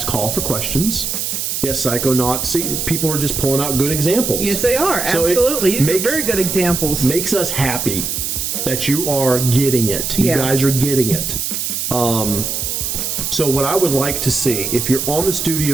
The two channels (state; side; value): noise; right; hiss, 2 dB below the sound